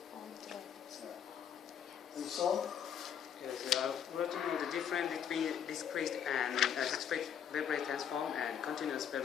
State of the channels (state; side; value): quieter; right; 8.4 dB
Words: And so. Yes, we want to know the difference between discrete and discrete Fourier transform and continuous